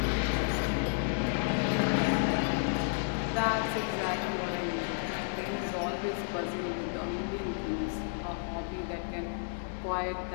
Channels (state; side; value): silent; right; digital silence